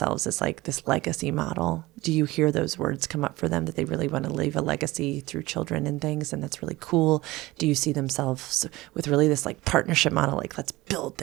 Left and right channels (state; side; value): quieter; left; 19.6 dB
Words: as like this legacy model? Do you hear those words come up for them, that they really want to leave a legacy through children and things? And that's really cool. Do you see themselves with really this like partnership model? Like, let's build